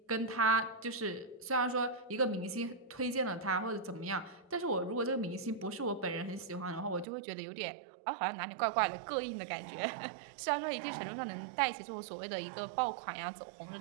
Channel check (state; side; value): drops out; left; at 7.1 s